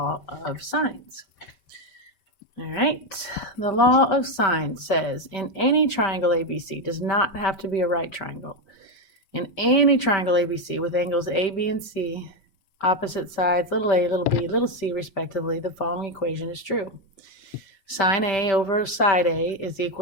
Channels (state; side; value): late; right; 5.2 ms